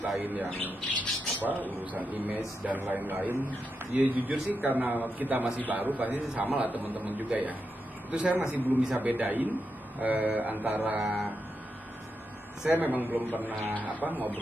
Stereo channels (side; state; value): both; normal; correlation 0.86